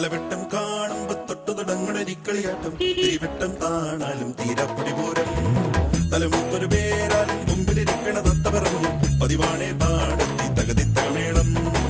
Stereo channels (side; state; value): both; identical; correlation 1.00